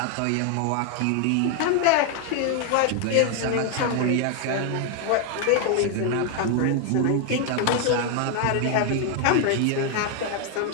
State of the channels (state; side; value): different; both; correlation 0.01